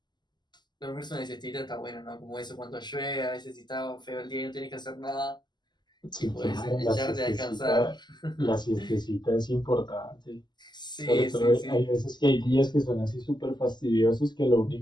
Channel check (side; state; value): right; late; 0.21 ms